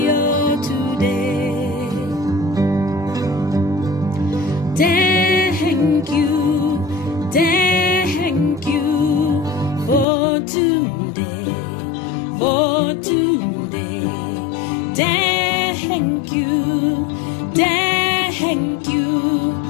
today. Thank you for today, for today. Thank you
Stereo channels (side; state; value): right; drops out; at 10.1 s